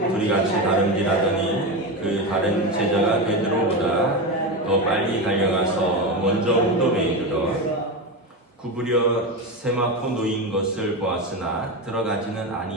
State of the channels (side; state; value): both; normal; correlation 0.17